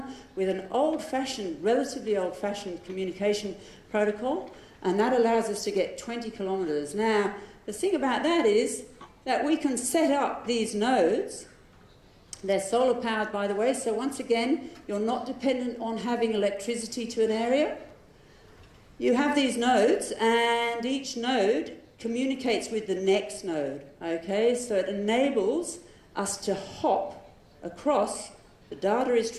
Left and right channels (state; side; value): identical; both; correlation 1.00